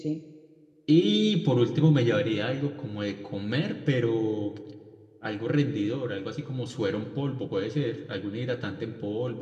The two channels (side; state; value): both; identical; correlation 1.00